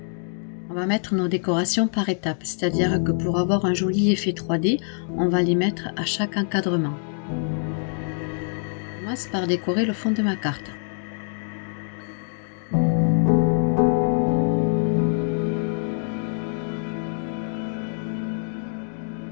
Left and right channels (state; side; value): silent; right; 62 dB below the other